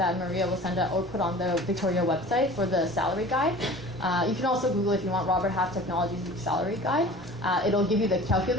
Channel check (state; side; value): normal; both; correlation 0.42